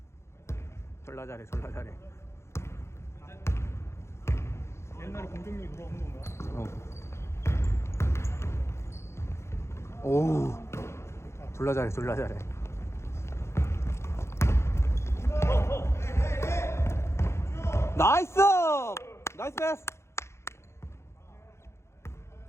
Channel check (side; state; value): right; late; 0.13 ms